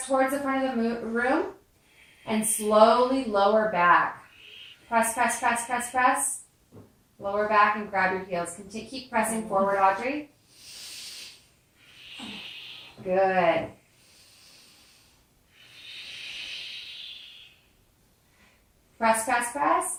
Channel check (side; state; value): both; identical; correlation 1.00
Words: front of the room. And slowly lower back. Press, press, press, press, press. Lower back and grab your heels. Keep pressing forward, Audrey. Good. Press, press, press,